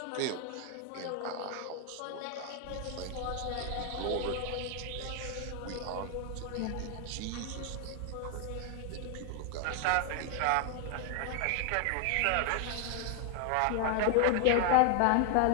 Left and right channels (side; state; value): both; different; correlation 0.00